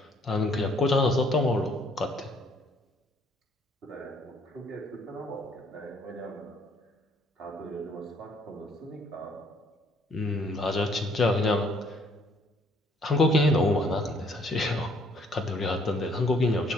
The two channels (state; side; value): normal; both; correlation 0.63